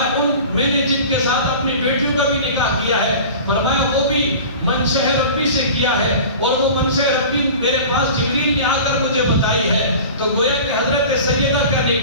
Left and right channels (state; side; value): inverted; both; correlation -0.38